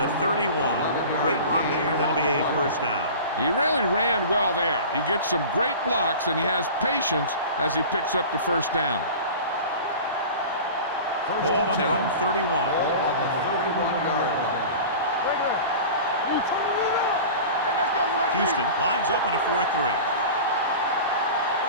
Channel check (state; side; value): inverted; both; correlation -0.36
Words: 31. Great run there. That'll be a 1st down. He really ran well there. He gets some great blocks, and he has patience as he picks up the 1st down. Ball on their own 31. Ball on the 31-yard line. Houston lines up in a 4-3.